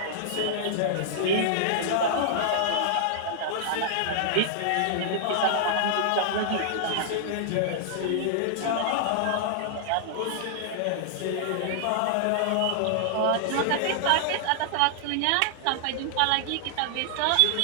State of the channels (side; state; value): both; different; correlation -0.01